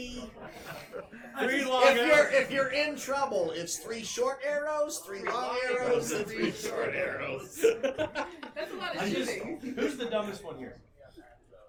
3 long arrows. If you're in trouble, it's 3 short arrows, 3 long arrows, and 3 short arrows. That's a lot of I just, shooting. who's the dumbest one here?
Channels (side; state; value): both; identical; correlation 1.00